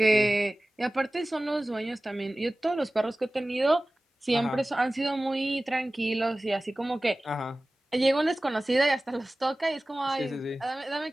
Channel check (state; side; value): normal; both; correlation 0.97